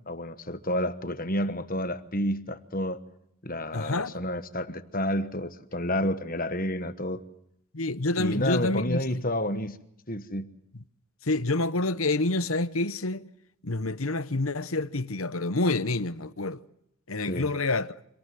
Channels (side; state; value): both; normal; correlation 0.21